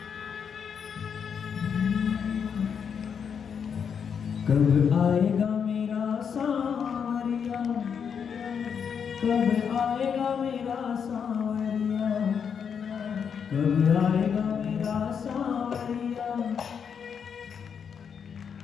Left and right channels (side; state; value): right; quieter; 7.1 dB